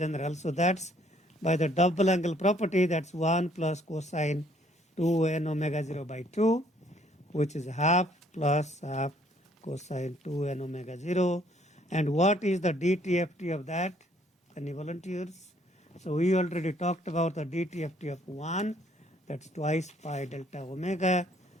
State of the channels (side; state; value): both; normal; correlation 0.64